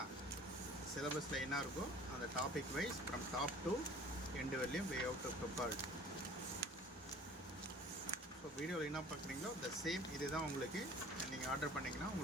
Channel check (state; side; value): normal; both; correlation 0.47